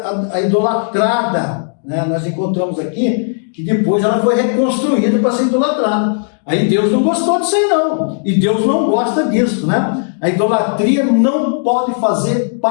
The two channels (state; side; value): silent; right; digital silence